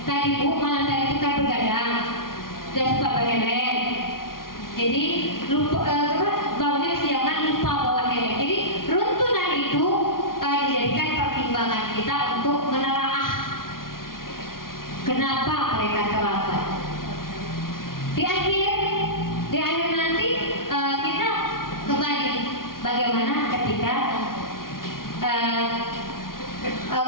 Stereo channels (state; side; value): late; right; 0.92 ms